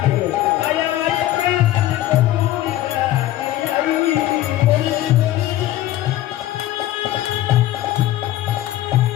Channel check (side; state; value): right; quieter; 14.4 dB